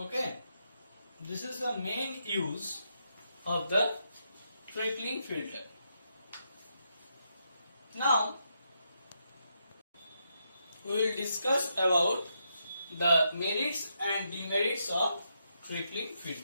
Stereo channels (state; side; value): inverted; both; correlation -0.81